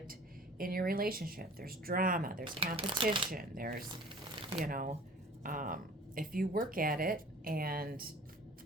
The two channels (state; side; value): normal; both; correlation 0.46